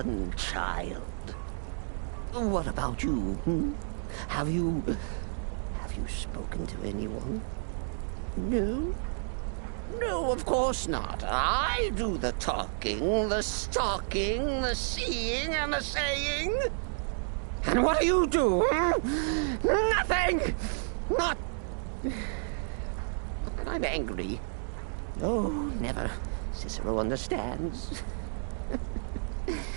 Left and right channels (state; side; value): silent; left; digital silence